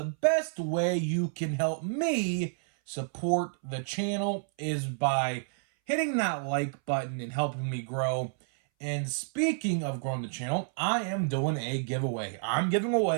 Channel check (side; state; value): left; silent; 58 dB below the other